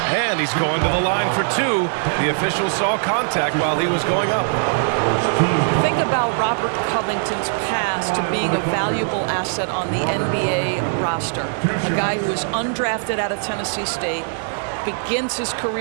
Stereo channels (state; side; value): silent; left; 65 dB below the other